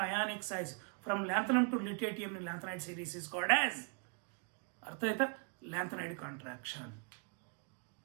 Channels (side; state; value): left; quieter; 37.6 dB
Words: size from lanthanum to lutetium in lanthanide series is called as, ಅರ್ಥ ಆಯ್ತಾ? Lanthanide contraction.